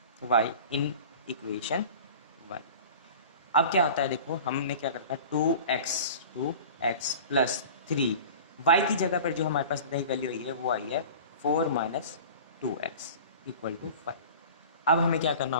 y in equation 1। अब क्या होता है, देखो हमने क्या करता है 2x प्लस 3, y की जगह पर जो हमारे पास नई वैल्यू आई है वो आई है 4 माइनस 2x इक्वल टू 5। अब हमें क्या करना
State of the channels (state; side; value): inverted; both; correlation -0.39